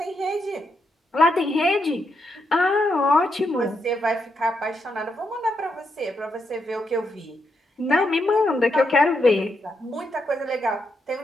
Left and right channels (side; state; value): both; normal; correlation 0.81